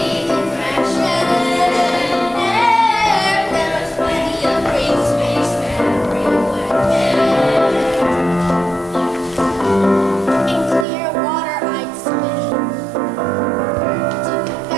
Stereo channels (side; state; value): left; drops out; at 10.9 s